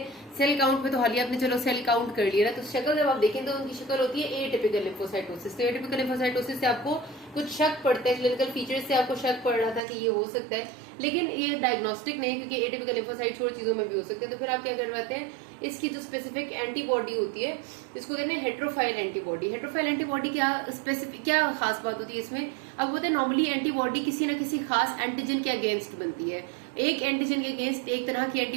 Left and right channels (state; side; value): drops out; left; at 9.8 s